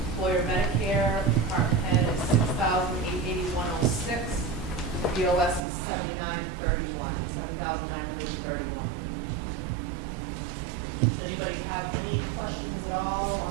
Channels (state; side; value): drops out; left; at 5.6 s